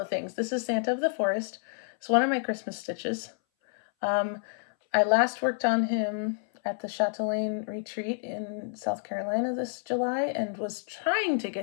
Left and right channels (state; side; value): silent; right; 59 dB below the other